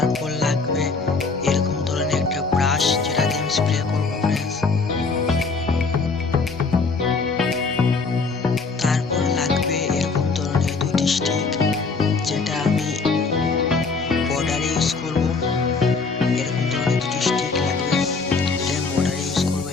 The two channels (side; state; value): right; quieter; 4.3 dB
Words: লাগবে এরকম ধরনের একটা ব্রাশ, যেটা দিয়ে আমি স্প্রে করবো ফ্রেন্ডস। তারপর লাগবে এরকম ধরনের দুটি স্টিক, যেটা আমি বর্ডারে ইউজ করব। এরকম ধরনের দুটি স্টিক লাগবে, যেটা আমি বর্ডারে ইউজ করবো